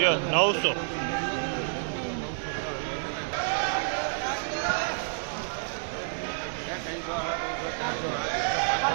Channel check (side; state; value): left; silent; digital silence